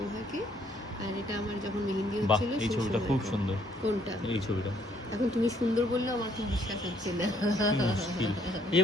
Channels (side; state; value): both; normal; correlation 0.67